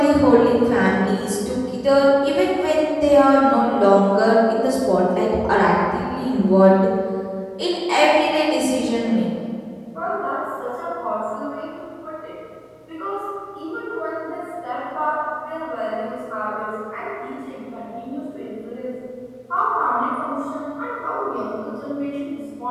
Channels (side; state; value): both; identical; correlation 1.00